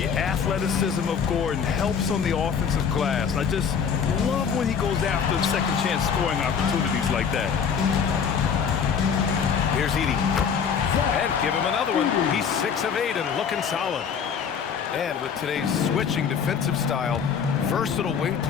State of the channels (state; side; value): quieter; right; 6.8 dB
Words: athleticism of Gordon helps on the offensive glass. I just love when he goes after second chance scoring opportunities like that. Here's Edey. And give him another one. He's 6 of 8 and looking solid. And with today's switching defensive style, versatile wing